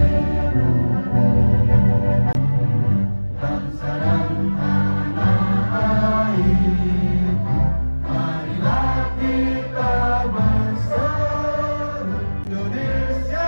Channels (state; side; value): inverted; both; correlation -1.00